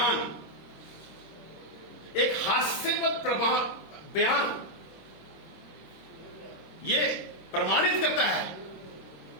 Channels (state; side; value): late; right; 26 ms